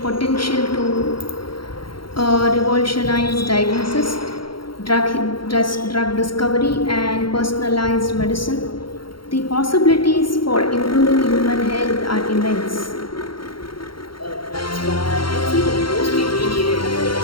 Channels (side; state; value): right; late; 0.73 ms